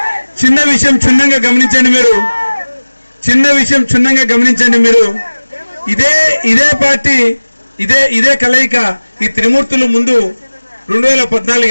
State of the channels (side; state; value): both; inverted; correlation -1.00